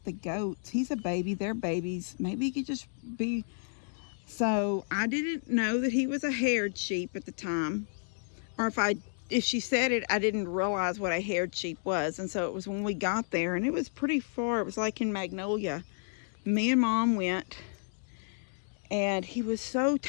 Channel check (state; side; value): silent; right; digital silence